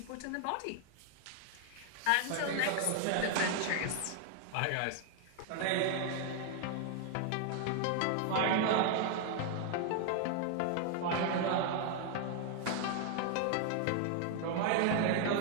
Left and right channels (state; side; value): different; both; correlation 0.00